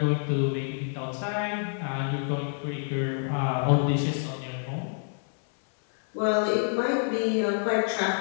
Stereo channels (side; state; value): right; silent; 60 dB below the other